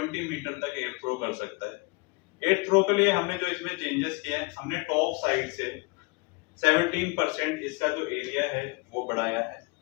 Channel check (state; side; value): quieter; right; 27.4 dB